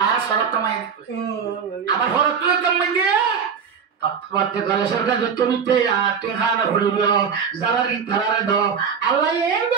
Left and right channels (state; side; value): quieter; left; 6.7 dB